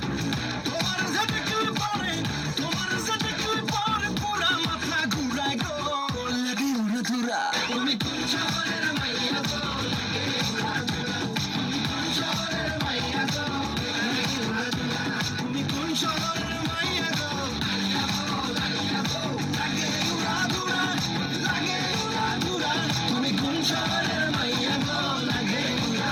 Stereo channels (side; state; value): both; identical; correlation 1.00